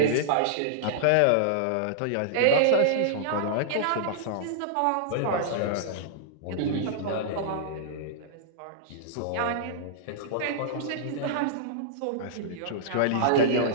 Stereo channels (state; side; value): different; both; correlation -0.01